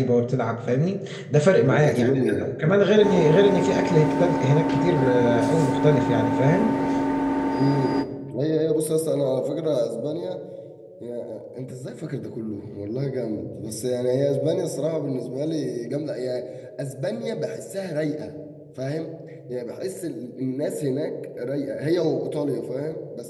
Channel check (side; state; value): both; identical; correlation 1.00